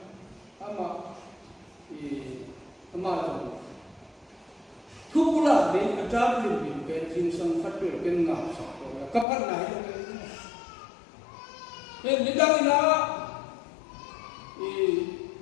ama rồi thuốc là đi ăn tráp liền liền cái chính sang phát biểu cái ngạo sọc rồi cấp phát này nên những cái đó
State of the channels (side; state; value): right; drops out; at 9.2 s